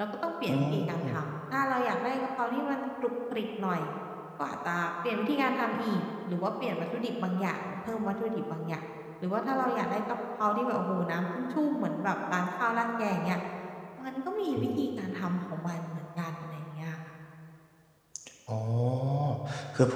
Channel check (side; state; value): both; identical; correlation 1.00